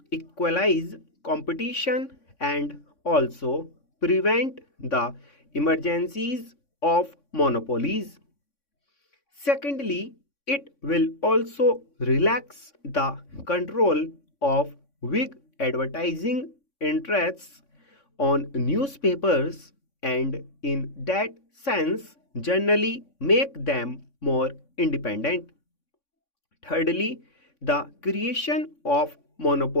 equalize competition and also prevent the emergencies of monopolies. Secondly, it will also relax the control of big advertising interests on newspapers, and in that sense generally make them more independent. Thirdly, the creation of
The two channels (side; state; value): right; late; 3.6 ms